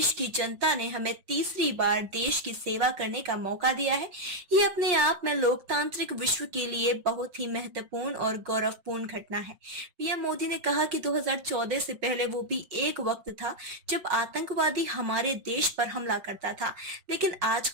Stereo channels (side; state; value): left; late; 5.6 ms